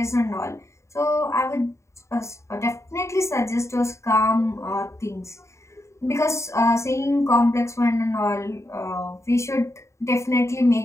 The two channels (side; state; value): right; late; 0.14 ms